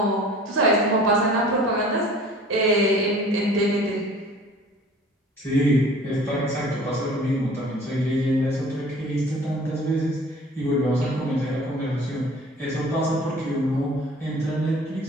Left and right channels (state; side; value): normal; both; correlation 0.47